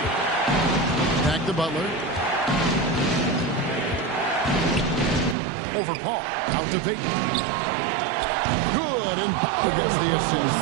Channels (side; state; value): left; drops out; at 5.4 s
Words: Back to Butler. Over Paul. Out to Peyton. Good, and Butler gets the assist.